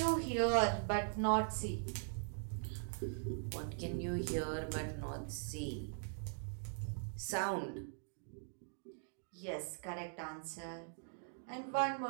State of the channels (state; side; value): silent; left; digital silence